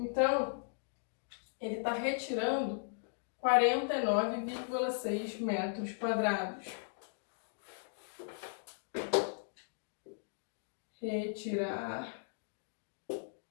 ele está retirando 49,6 metros quadrados. Retirar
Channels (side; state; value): right; silent; digital silence